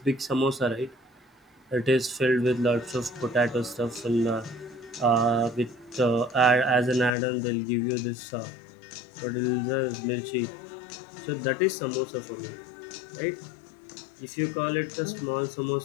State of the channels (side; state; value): right; drops out; at 7.1 s